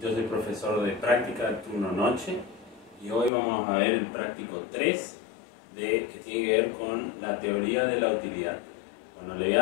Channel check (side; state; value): right; drops out; at 3.3 s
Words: yo soy profesor de práctica de turno noche y hoy vamos a ver el práctico 3 que tiene que ver con la teoría de la utilidad. Bueno, le voy